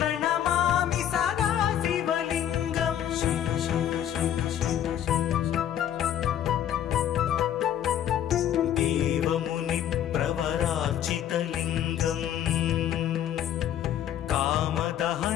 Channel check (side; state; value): right; quieter; 10.5 dB